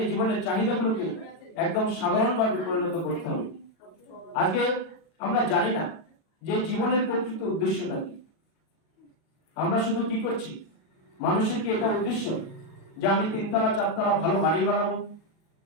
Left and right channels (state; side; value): late; right; 37 ms